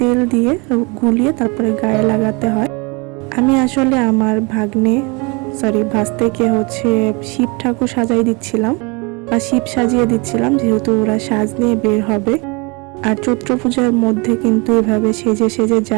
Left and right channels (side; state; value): left; quieter; 29.2 dB